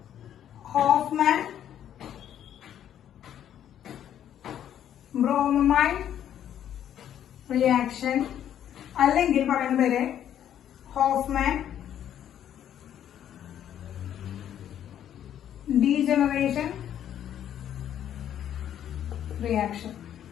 ഹോഫ്മാൻ ബ്രോമൈഡ് റിയാക്ഷൻ, അല്ലെങ്കിൽ പറയുന്ന പേര് ഹോഫ്മാൻ ഡീജനറേഷൻ റിയാക്ഷൻ.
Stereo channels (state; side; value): quieter; right; 10.3 dB